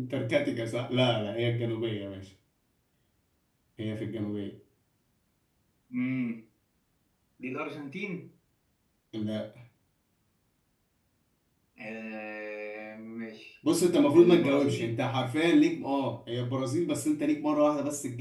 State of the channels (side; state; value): both; identical; correlation 1.00